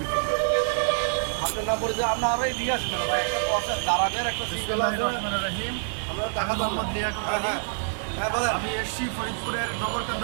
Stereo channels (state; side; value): silent; left; digital silence